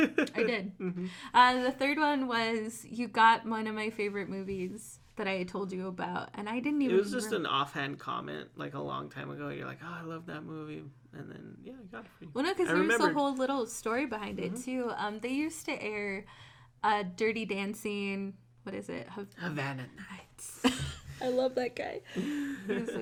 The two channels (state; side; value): identical; both; correlation 1.00